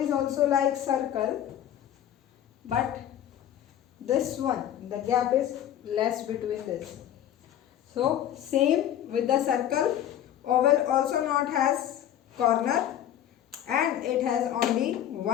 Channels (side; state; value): right; quieter; 11.0 dB